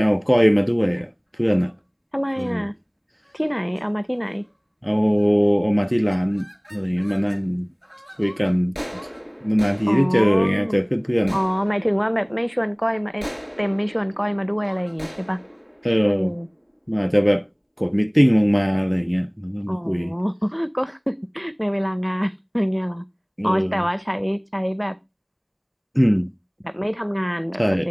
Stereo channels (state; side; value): identical; both; correlation 1.00